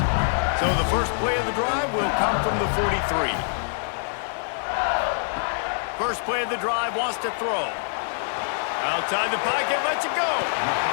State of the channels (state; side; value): silent; right; digital silence